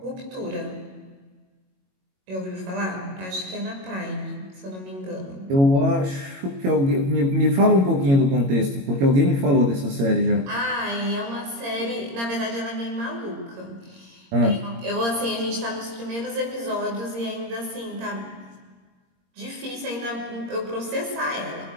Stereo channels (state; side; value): late; left; 22 ms